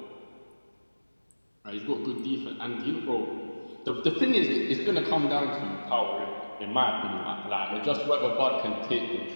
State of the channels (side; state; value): both; inverted; correlation -1.00